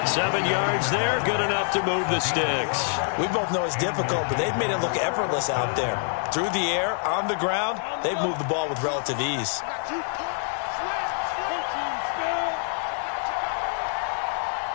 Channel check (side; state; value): right; silent; 61 dB below the other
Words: 7 yards there, good enough to move the sticks. We both know it's difficult, but they've made it look effortless out there. Through the air, on the ground, they've moved the ball with relative ease.